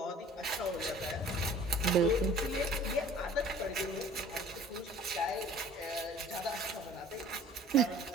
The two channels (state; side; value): normal; both; correlation 0.49